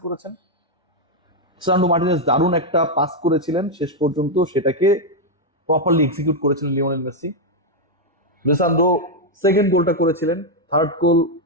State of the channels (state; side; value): normal; both; correlation 0.00